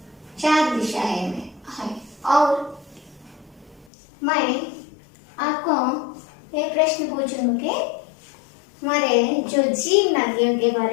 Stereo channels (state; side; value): drops out; right; at 3.9 s